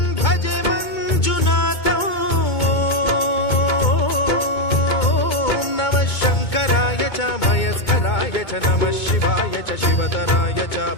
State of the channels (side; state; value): right; late; 2.2 ms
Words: भजे मञ्जुनाथं। ॐ नमः शङ्कराय च मयस्कराय च नमः शिवाय च शिवतराय च